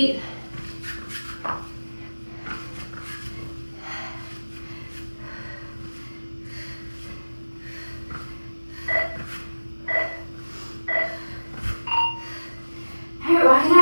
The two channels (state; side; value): inverted; both; correlation -1.00